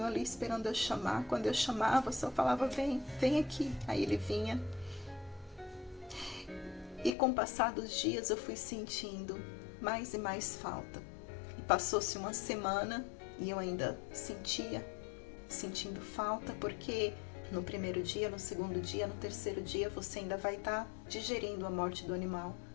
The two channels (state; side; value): drops out; right; at 7.1 s